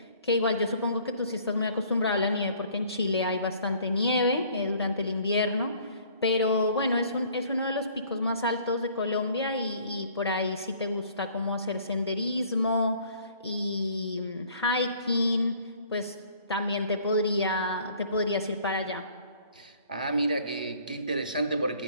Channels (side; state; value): both; inverted; correlation -0.56